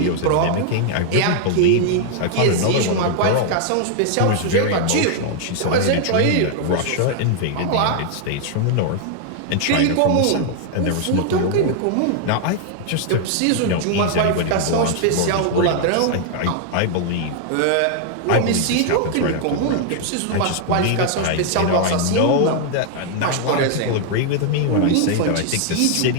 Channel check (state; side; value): different; both; correlation 0.00